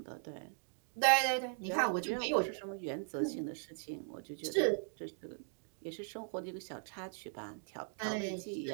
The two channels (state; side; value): silent; left; 52 dB below the other